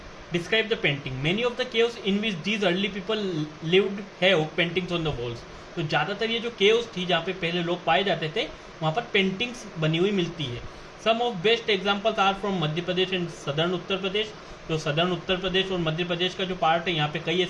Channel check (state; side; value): identical; both; correlation 1.00